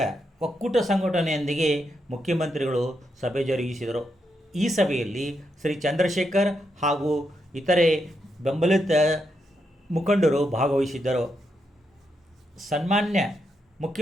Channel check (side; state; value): both; normal; correlation 0.82